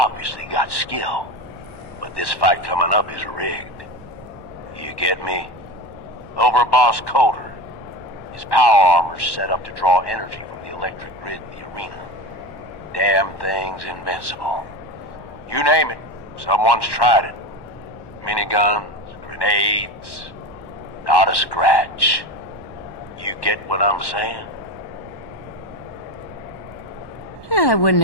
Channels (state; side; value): late; right; 1.1 ms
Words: got skill. But this fight coming up is rigged. You get me? Overboss Coulter. His power armor's set up to draw energy from the electric grid in the arena. Damn thing's invincible. You name it, someone's tried it. Miniguns, grenades, not a scratch. You get what I'm saying? Yeah, I wouldn't